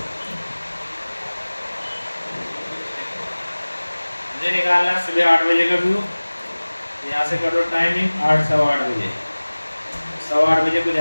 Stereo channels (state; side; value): inverted; both; correlation -1.00